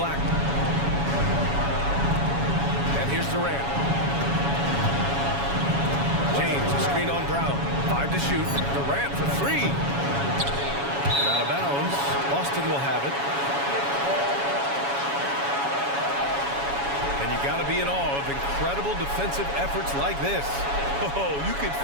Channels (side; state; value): left; late; 7.2 ms